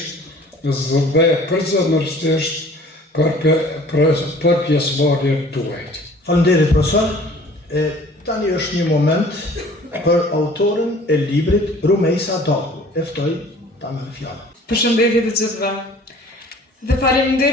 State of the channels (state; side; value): normal; both; correlation 0.50